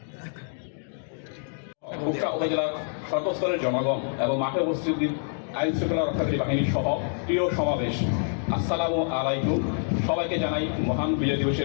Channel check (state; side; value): silent; right; digital silence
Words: কুষ্টিয়া উপজেলার সর্বস্তরের জনগণ এবং মাঠে উপস্থিত আইন শৃঙ্খলা রক্ষাকারী বাহিনী সহ প্রিয় সমাবেশ, আসসালামু আলাইকুম। সবাইকে জানাই মহান বিজয়